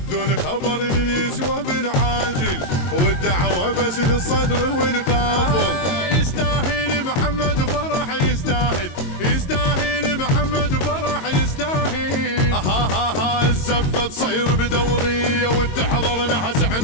خبر يسوى بالعاجل، والدعوة بس للصدر والقافل. يستاهل محمد فرح، يستاهل يستاهل محمد فرح، يستاهل. الزفة تصير بدورية وتحضر نحس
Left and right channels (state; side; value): late; right; 22 ms